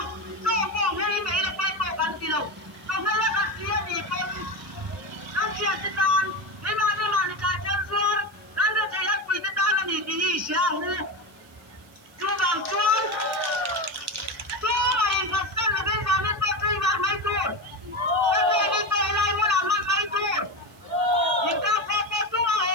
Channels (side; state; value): right; noise; hiss, 28 dB below the sound